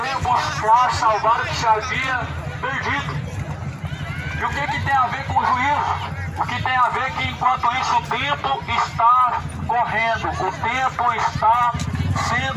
veio buscar salvar o que se havia perdido. E o que tem a ver com o juízo? O que tem a ver é que enquanto isso o tempo está correndo, o tempo está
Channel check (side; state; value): both; identical; correlation 1.00